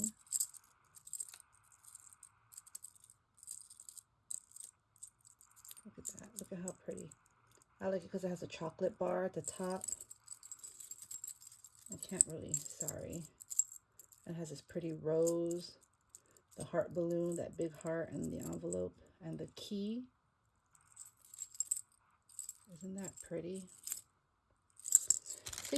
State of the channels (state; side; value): identical; both; correlation 1.00